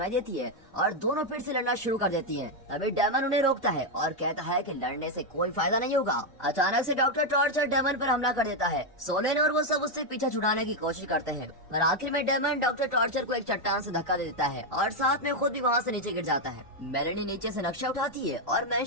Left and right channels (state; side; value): normal; both; correlation 0.03